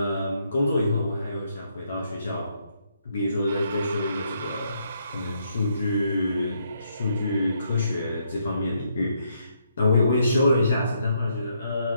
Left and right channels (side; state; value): both; inverted; correlation -0.75